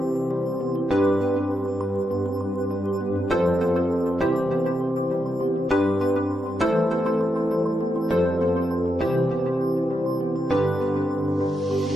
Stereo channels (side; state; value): both; normal; correlation 0.84